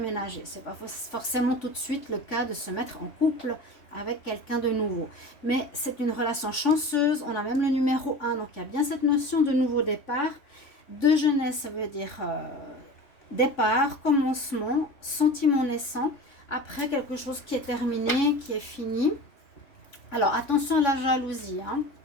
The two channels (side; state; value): right; late; 3.5 ms